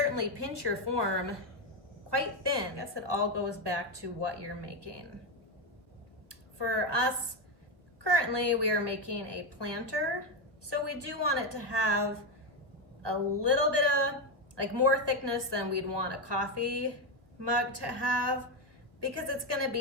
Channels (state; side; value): late; left; 1.5 ms